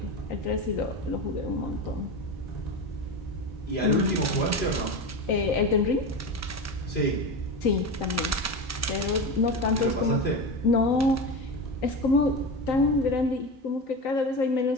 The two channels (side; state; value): both; normal; correlation 0.22